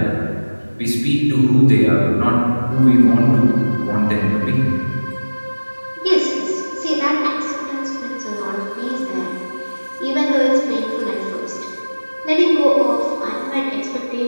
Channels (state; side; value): inverted; both; correlation -1.00